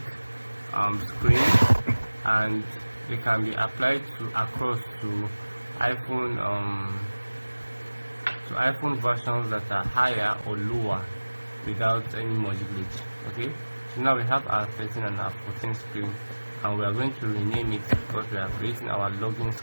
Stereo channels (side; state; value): both; inverted; correlation -1.00